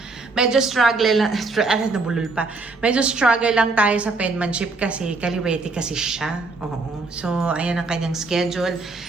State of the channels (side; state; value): left; quieter; 3.7 dB